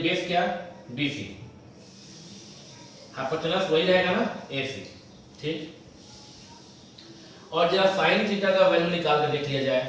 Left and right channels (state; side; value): identical; both; correlation 1.00